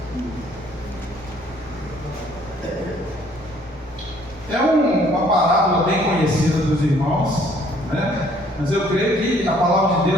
É uma parábola bem conhecida dos irmãos, né? Mas eu creio que a palavra de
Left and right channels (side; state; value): both; normal; correlation 0.61